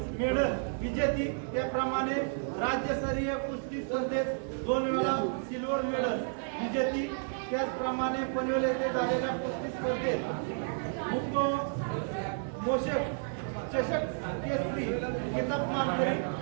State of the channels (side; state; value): left; silent; 57 dB below the other